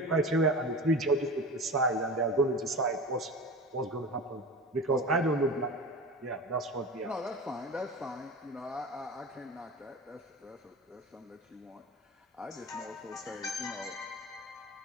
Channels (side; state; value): both; normal; correlation 0.32